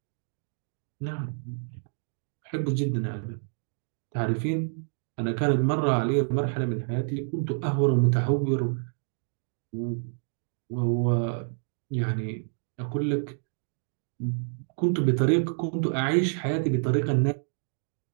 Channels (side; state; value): left; silent; digital silence